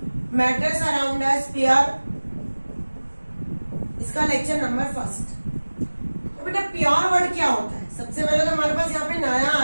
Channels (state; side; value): inverted; both; correlation -1.00